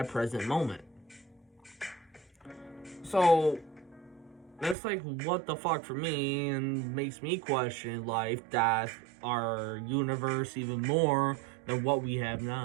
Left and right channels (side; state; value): left; drops out; at 4.8 s